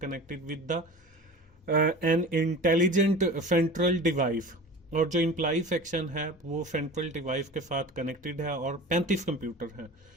connected with the an intelligent central device. और जो एम्प्लॉय सेक्शन है वो सेंट्रल डिवाइस के साथ कनेक्टेड है और 35 कंप्यूटर हैं।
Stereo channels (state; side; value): normal; both; correlation 0.36